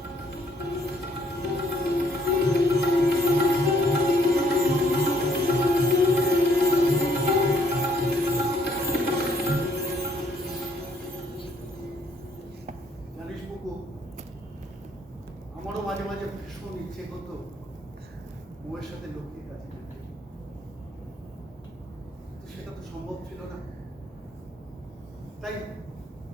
জানিস বুকু, আমারও মাঝে মাঝে ভীষণ ইচ্ছে করতো বউয়ের সাথে লক্ষ্মীর কাছে যেতে। তো সেটা তো সম্ভব ছিল না, তাই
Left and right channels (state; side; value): normal; both; correlation 0.66